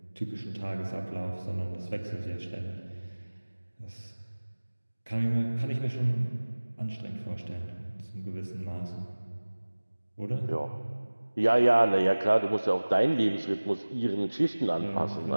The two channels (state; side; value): inverted; both; correlation -1.00